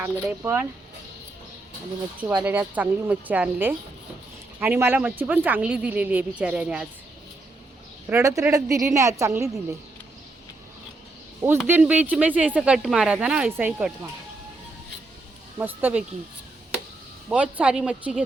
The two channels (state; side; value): quieter; left; 3.1 dB